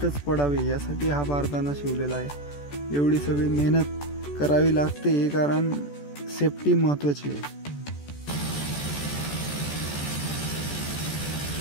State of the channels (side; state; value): right; late; 14 ms